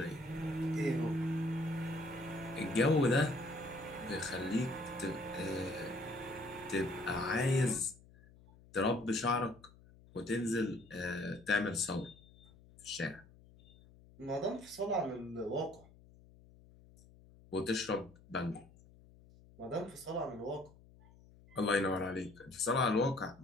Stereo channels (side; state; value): left; noise; hum, 24 dB below the sound